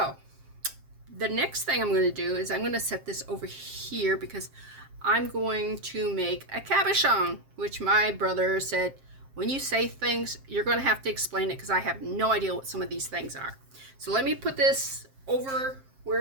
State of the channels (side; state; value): left; late; 7.5 ms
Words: the next thing I'm going to do is I'm going to set this over here because I'm going to make a cabochon, which my brother said, when you say things, you're going to have to explain it because I have no idea what some of these things are. So let me put this over